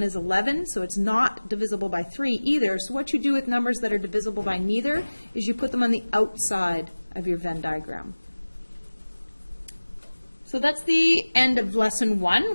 is 11, so it's not divisible by 3 either. So what you do with numbers that are divisible by neither is you put them on the outside of your Venn diagram. So that's the end of lesson 1.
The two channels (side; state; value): both; inverted; correlation -1.00